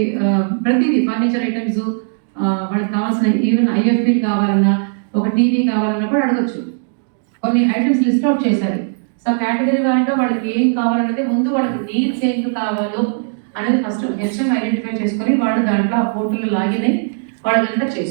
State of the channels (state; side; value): silent; left; digital silence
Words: ప్రతిదీ ఫర్నిచర్ ఐటమ్స్ వాళ్ళకి కావాల్సిన ఈవెన్ ఐఎఫ్పీ కావాలన్నా, ఒక టీవీ కావాలన్నా కూడా అడగచ్చు. కొన్ని ఐటమ్స్ లిస్ట్ అవుట్ చేశారు. సో కేటగిరీ వారిగా వాళ్ళకి ఏం కావాలనేది ముందు వాళ్ళకి నీడ్స్ ఏం కావాలో అనేది ఫస్ట్ హెచ్ఎం ఐడెంటిఫై చేసుకొని వాళ్ళు దాంట్లో ఆ పోర్టల్లో లాగిన్ అయ్యి వాళ్ళంతా